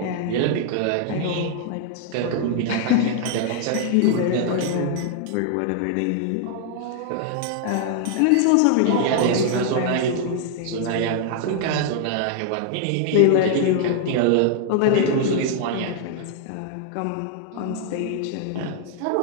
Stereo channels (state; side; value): different; both; correlation 0.00